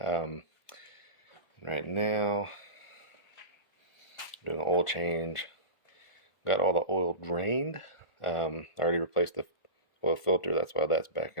now, doing an oil change. Got all the oil drained. I already replaced the oil filter, that's why that's back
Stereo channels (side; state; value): right; late; 1.4 ms